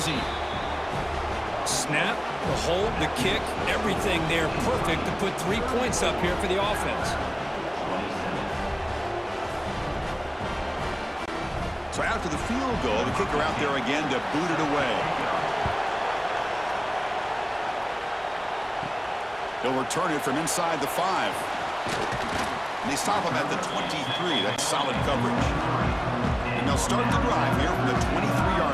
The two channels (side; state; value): both; identical; correlation 1.00